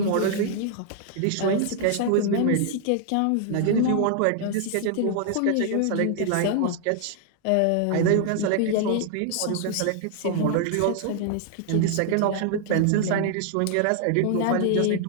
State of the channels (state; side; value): different; both; correlation 0.00